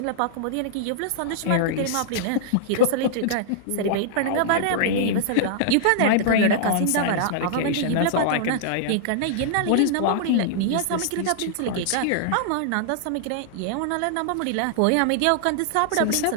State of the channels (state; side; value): different; both; correlation -0.01